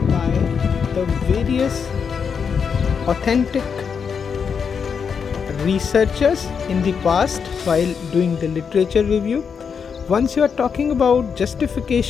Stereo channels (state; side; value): quieter; right; 6.4 dB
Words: by the various authentic researchers in the past while doing the literature review. Once you are talking about